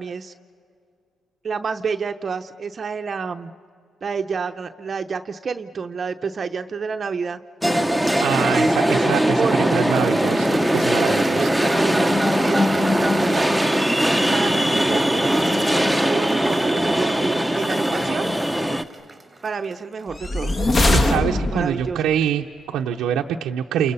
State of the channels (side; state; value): both; normal; correlation 0.90